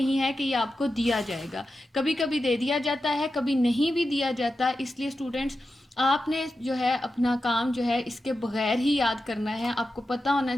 है कि ये आपको दिया जाएगा। कभी कभी दे दिया जाता है, कभी नहीं भी दिया जाता। इसलिए स्टूडेंट्स, आपने जो है अपना काम जो है इसके बगैर ही याद करना है। आपको पता होना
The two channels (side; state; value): both; normal; correlation 0.91